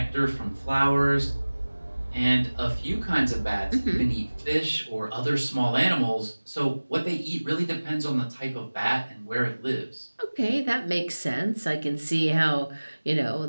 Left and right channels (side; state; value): both; inverted; correlation -1.00